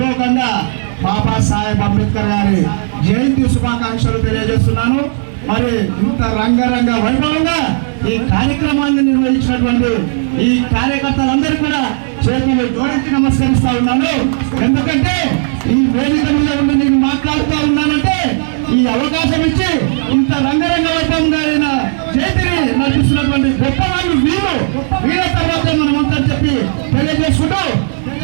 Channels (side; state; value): left; silent; digital silence